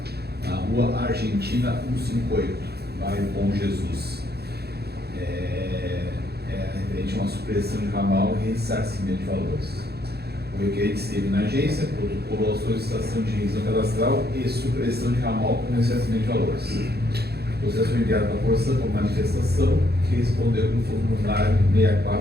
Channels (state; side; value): late; left; 0.47 ms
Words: na rua Argentina 158, bairro Bom Jesus. Referente a uma supressão de ramal e ressarcimento de valores. O requerente esteve na agência, protocolou a solicitação de revisão cadastral e supressão de ramal com ressarcimento de valores. O processo foi enviado para a Corsã por manifestação, que respondeu no formulário